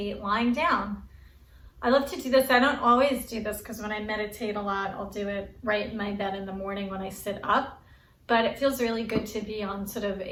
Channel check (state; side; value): identical; both; correlation 1.00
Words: lying down. I love to do this. I don't always do this because when I meditate a lot, I'll do it right in my bed in the morning when I sit up. But it feels really good to be on sort of